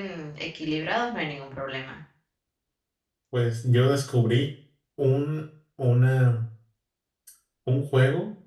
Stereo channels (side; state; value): both; identical; correlation 1.00